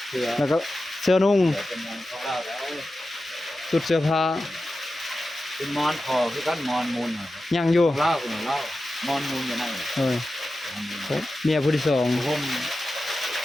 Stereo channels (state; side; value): normal; both; correlation 0.93